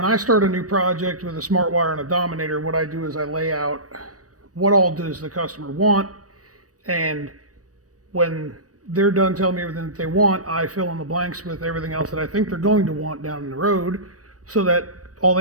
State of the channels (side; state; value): left; late; 0.66 ms